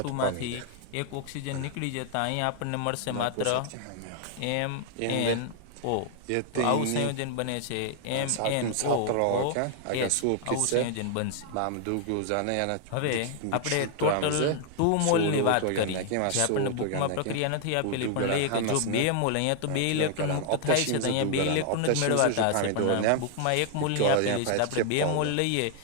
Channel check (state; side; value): different; both; correlation 0.00